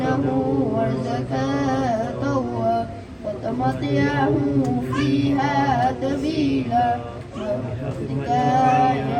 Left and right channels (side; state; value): both; identical; correlation 1.00